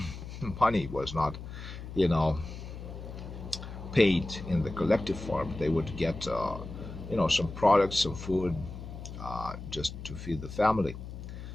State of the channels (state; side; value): noise; left; hum, 10 dB below the sound